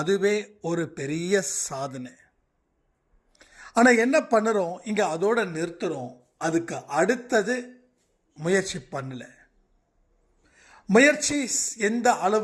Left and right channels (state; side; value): identical; both; correlation 1.00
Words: ஒரு பெரிய சாதனை. ஆனால் என்ன பண்ணுறோம், இங்கே அதோட நிறுத்துகிறோம். அதுக்கு அடுத்தது முயற்சி பண்ணல. முயற்சி எந்த